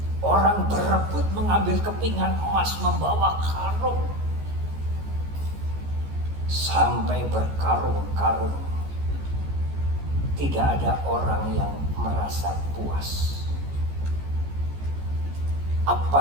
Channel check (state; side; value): late; left; 14 ms